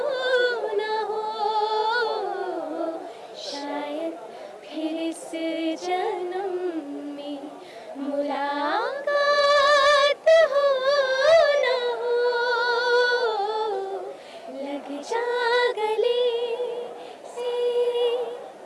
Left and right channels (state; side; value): identical; both; correlation 1.00